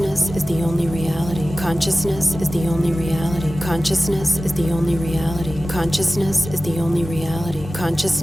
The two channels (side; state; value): both; normal; correlation 0.96